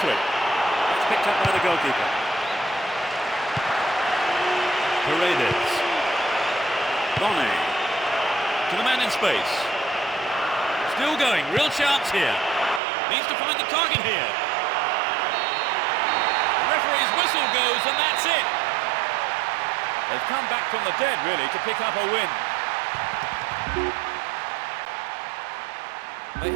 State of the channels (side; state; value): left; drops out; at 12.8 s